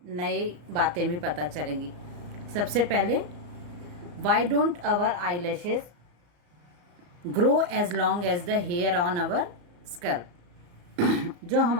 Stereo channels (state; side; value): late; left; 34 ms